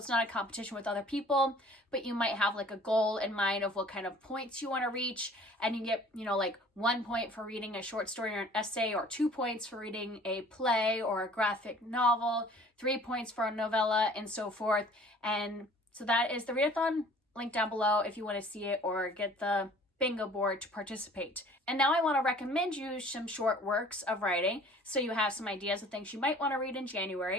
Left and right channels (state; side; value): normal; both; correlation 0.51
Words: not a competition with other people, but you might have like a goal in mind of what kind of points you want to reach. And you get, 1 point for reading a short story or an essay, or 2 points for reading a play or a graphic novel, 3 points for a novella, and so forth. And so that is the readathon. Link down below if you want to see it or get the bingo board to participate. And now I want to recommend you some short works of writing so you have some ideas of things you might want to read in